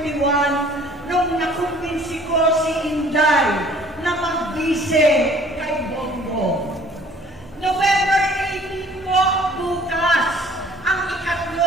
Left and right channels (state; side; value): normal; both; correlation 0.54